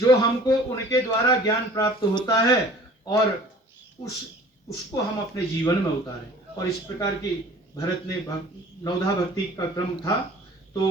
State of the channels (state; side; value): normal; both; correlation 0.47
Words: हमको उनके द्वारा ज्ञान प्राप्त होता है और उसको हम अपने जीवन में उतारें। और इस प्रकार की भरत ने नवधा भक्ति का क्रम था।